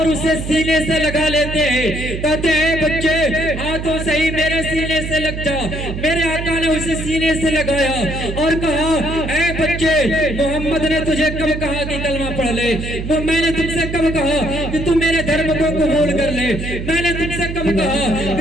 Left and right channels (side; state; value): right; noise; hum, 6 dB below the sound